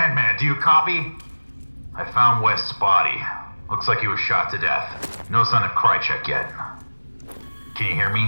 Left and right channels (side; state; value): both; inverted; correlation -1.00